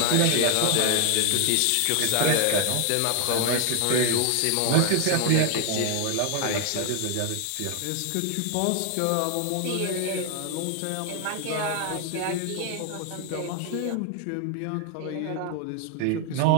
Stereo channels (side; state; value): both; different; correlation 0.01